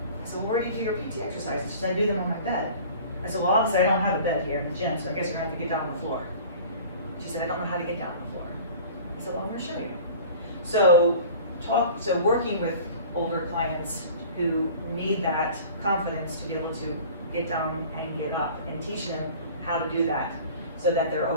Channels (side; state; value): both; inverted; correlation -0.43